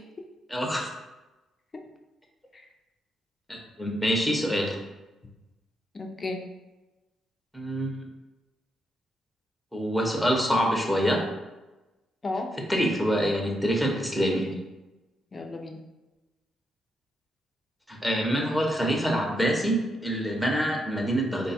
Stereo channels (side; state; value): both; normal; correlation 0.81